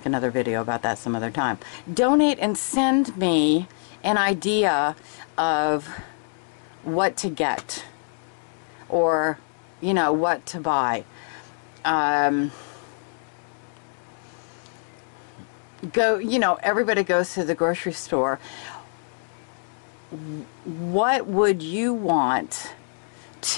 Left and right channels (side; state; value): right; silent; 62 dB below the other